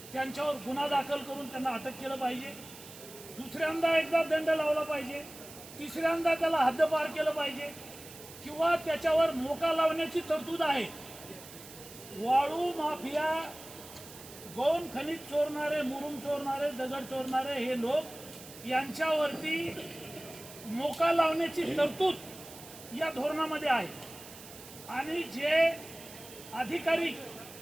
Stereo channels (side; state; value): right; noise; hiss, 16 dB below the sound